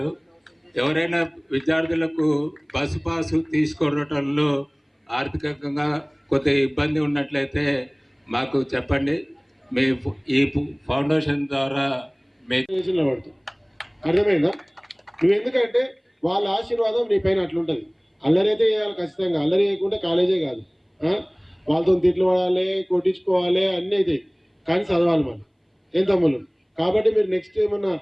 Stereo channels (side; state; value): both; identical; correlation 1.00